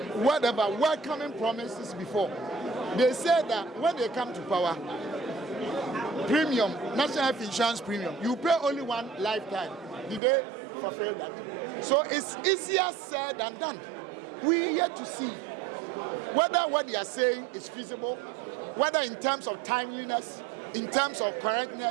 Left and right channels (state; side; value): drops out; left; at 10.2 s